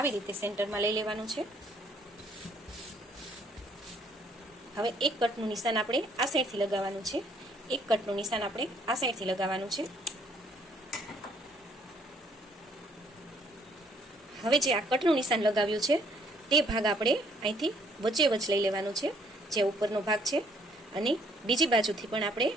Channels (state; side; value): normal; both; correlation 0.64